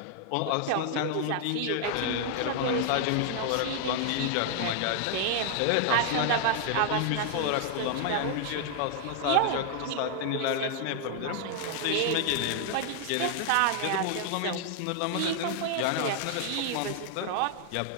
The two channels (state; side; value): different; both; correlation 0.00